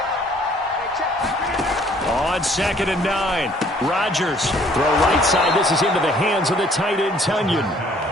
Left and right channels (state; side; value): normal; both; correlation 0.60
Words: On 2nd and 9, Rodgers. Throw right side. This is into the hands of the tight end, Tunyon.